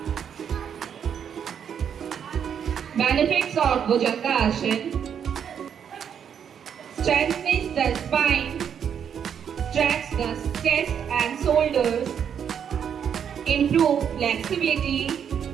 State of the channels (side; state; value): left; quieter; 8.1 dB